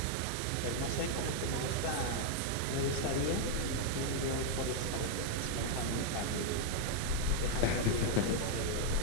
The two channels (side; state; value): both; different; correlation 0.00